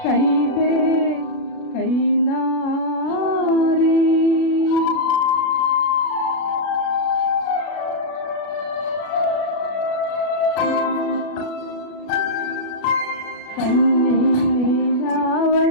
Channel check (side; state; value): right; late; 36 ms